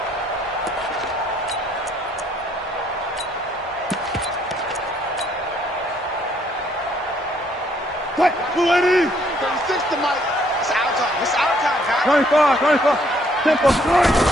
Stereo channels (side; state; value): both; normal; correlation 0.66